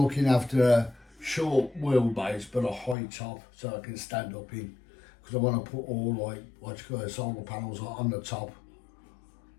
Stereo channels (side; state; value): right; drops out; at 3.0 s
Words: looking after a short wheelbase, but a high top, so I can stand up in. Because I want to put all, like, solar panels on the top,